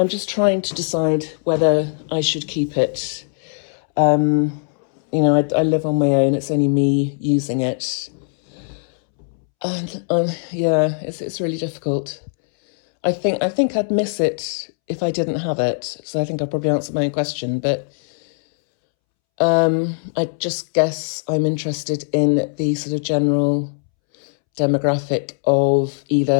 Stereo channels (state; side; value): silent; right; 66 dB below the other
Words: just trying to decide whether I should keep it. I live on my own. It's only me using it. And yeah, it's really difficult. I think I'd miss it if I didn't have it. So I think I'll probably answer my own question. But I just guess I'm interested in the sort of general demographic of